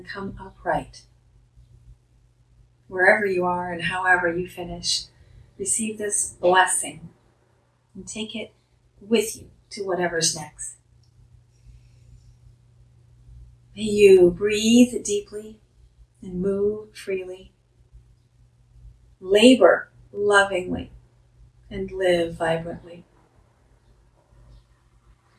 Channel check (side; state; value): both; identical; correlation 1.00